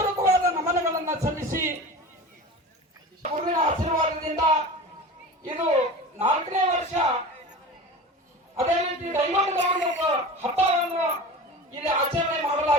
ನಮನಗಳನ್ನ ಸಲ್ಲಿಸಿ ಗುರುವಿನ ಆಶೀರ್ವಾದದಿಂದ ಇದು 4ನೇ ವರ್ಷ. ಅದೇ ರೀತಿ ದೈವದ ಹಬ್ಬವನ್ನು ಇಲ್ಲಿ ಆಚರಣೆ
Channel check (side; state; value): both; normal; correlation 0.33